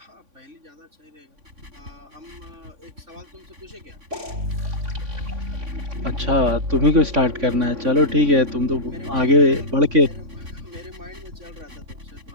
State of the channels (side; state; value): left; late; 3.5 ms